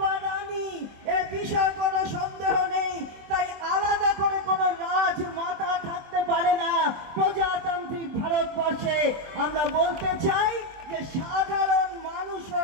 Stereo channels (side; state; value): left; late; 24 ms